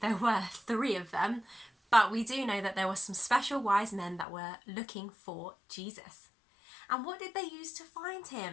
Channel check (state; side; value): drops out; right; at 4.2 s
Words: were three of them, but we do know that there were some special wise men that were looking for Jesus. And what did they use to find